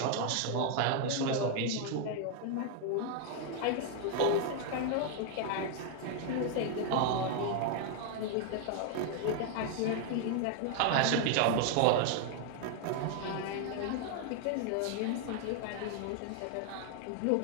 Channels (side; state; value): both; different; correlation 0.00